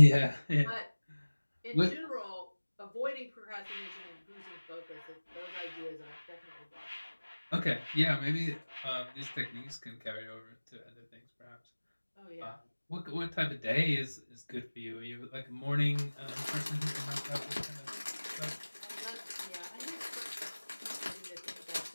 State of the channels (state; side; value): inverted; both; correlation -1.00